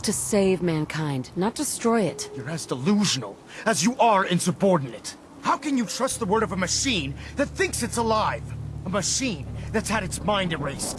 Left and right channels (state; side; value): identical; both; correlation 1.00